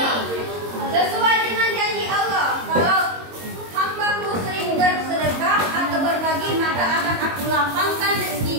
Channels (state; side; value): late; left; 22 ms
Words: Sesuai dengan janji Allah, kalau hamba-Ku sering bersedekah atau berbagi, maka akan Aku lapangkan